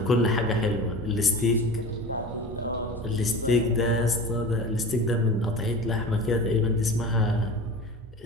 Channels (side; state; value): both; normal; correlation 0.34